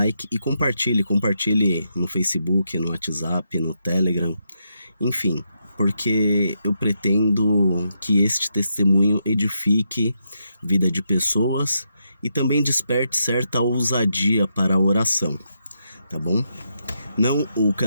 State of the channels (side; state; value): both; inverted; correlation -0.81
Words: e compartilhe no Facebook, no WhatsApp, no Telegram, enfim, porque eu pretendo que este testemunho edifique a vida de pessoas e também desperte certa ousadia para a oração, tá bom? Não, o